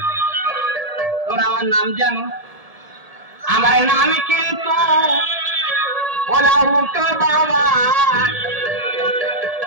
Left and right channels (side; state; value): left; late; 1.7 ms